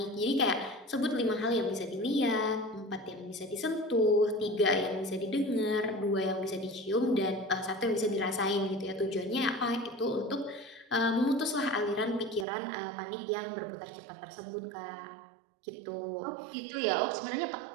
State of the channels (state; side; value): drops out; left; at 12.5 s